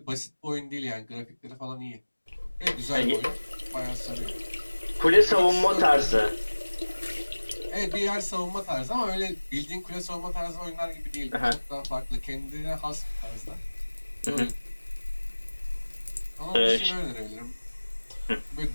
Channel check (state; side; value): inverted; both; correlation -1.00